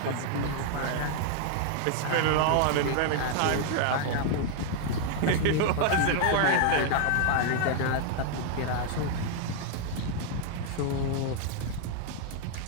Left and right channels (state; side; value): different; both; correlation 0.00